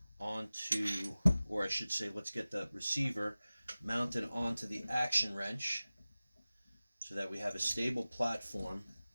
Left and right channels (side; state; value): both; inverted; correlation -0.97